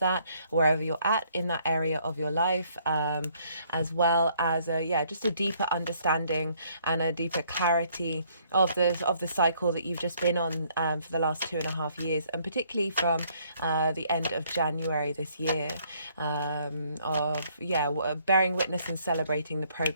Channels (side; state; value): both; inverted; correlation -0.66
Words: that wherever you're at in that area of your life, as well as just a deeper understanding and a deeper clarity of the cycle that you've just been on for the last 2.5 years, and particularly from the end of January this year, bearing witness and celebrating the